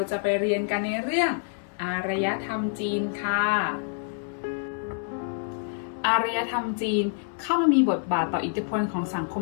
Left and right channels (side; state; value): right; silent; 60 dB below the other